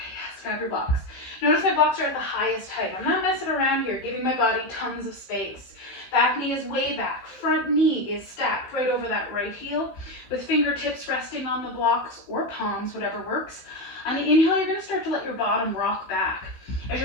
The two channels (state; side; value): late; right; 15 ms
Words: yes, grab your blocks. Notice my blocks are at the highest height. I'm not messing around here, giving my body tons of space. Back knee is way back. Front knee is stacked right over that right heel with fingertips resting on the blocks or palms, whatever works. On the inhale, you're going to start to let your bottom rock back. As